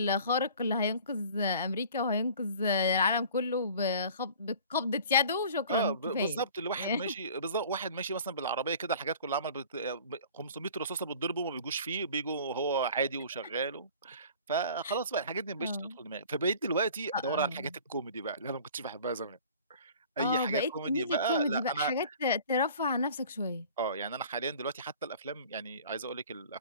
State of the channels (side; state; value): both; inverted; correlation -0.46